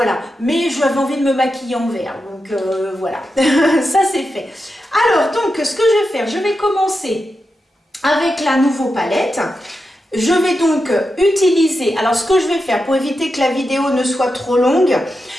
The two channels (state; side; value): normal; both; correlation 0.89